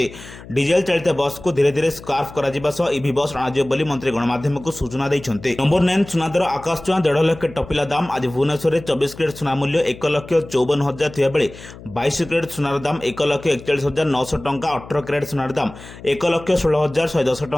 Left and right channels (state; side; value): noise; left; hum, 17 dB below the sound